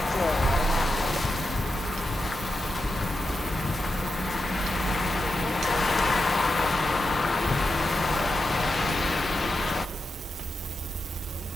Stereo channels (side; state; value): both; normal; correlation 0.88